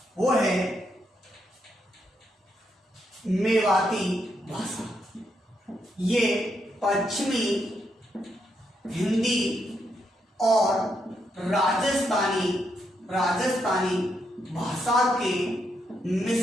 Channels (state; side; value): normal; both; correlation 0.79